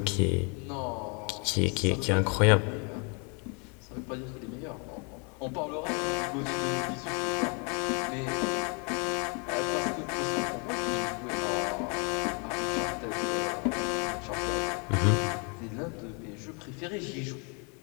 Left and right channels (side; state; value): right; quieter; 35.0 dB